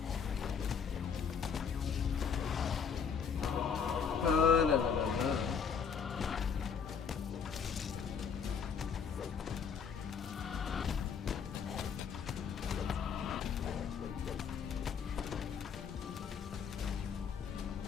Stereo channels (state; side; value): quieter; right; 6.6 dB